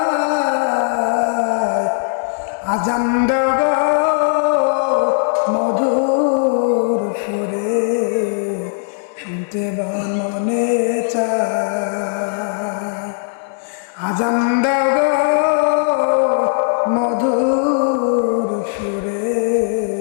আজান দাও গো মধুর সুরে, শুনতে মনে চায়। আজান দাও গো মধুর সুরে,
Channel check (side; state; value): right; silent; digital silence